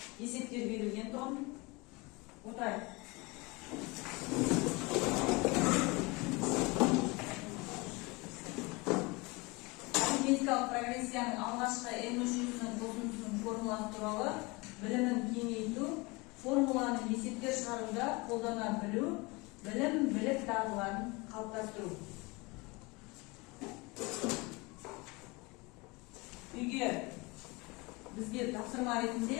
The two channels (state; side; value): quieter; right; 25.5 dB